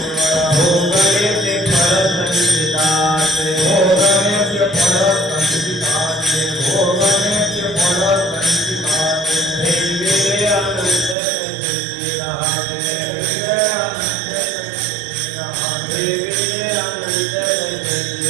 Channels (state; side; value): drops out; left; at 11.2 s